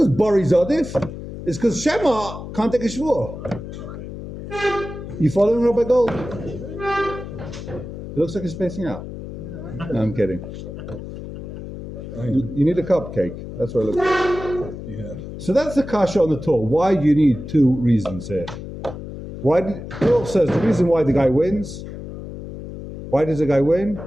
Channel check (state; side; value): noise; left; hum, 10 dB below the sound